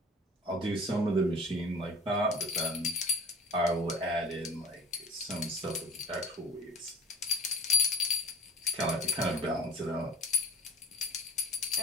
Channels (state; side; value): normal; both; correlation 0.42